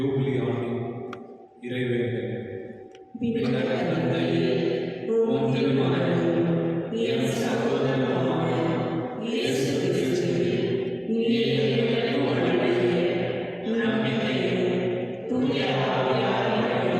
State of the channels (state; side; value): identical; both; correlation 1.00